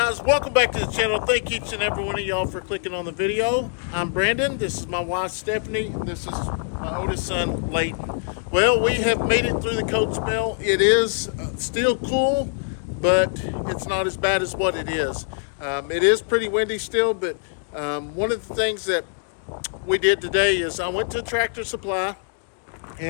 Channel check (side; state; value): right; silent; digital silence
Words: welcome back to the channel. Thank each and every one of y'all for clicking on the video. I'm Brandon. This is my wife Stephanie. This is my oldest son Leighton. Well, we have made it through the cold spell. It is still cool, but it's not as bad as what it is. It is pretty windy still, but one of the things that we did today is I went to Tractor Supply